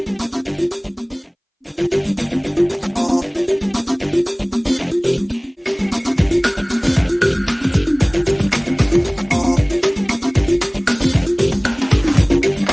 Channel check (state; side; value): identical; both; correlation 1.00